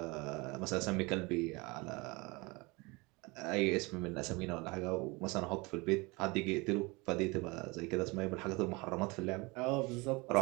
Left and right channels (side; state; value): left; quieter; 25.6 dB